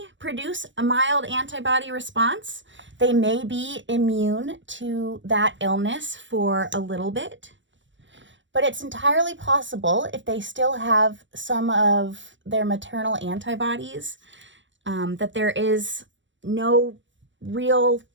produce a mild antibody response. They may be immune to that illness for a little bit. But it's entirely possible, if they still have some of their maternal antibodies, that there is no real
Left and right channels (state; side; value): late; left; 0.54 ms